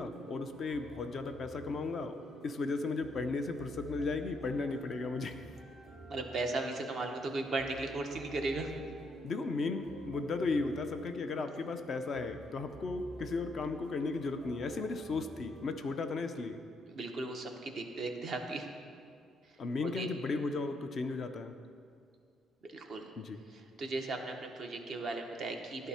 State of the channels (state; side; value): normal; both; correlation 0.74